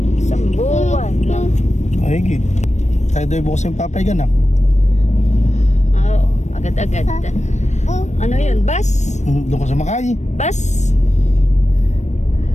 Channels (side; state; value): right; late; 0.34 ms